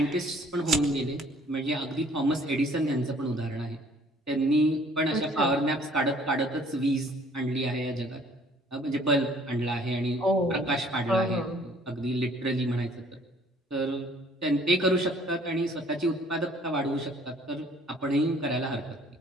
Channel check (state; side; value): normal; both; correlation 0.57